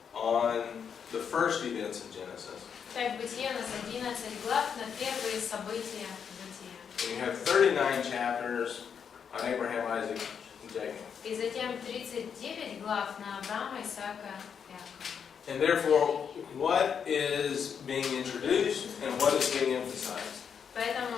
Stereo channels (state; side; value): quieter; right; 7.2 dB